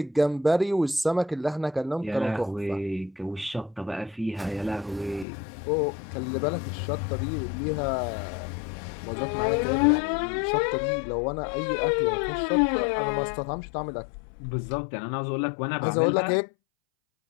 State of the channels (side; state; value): right; drops out; at 5.2 s